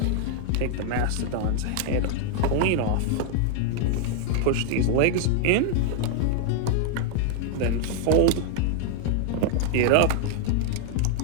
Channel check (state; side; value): different; both; correlation 0.00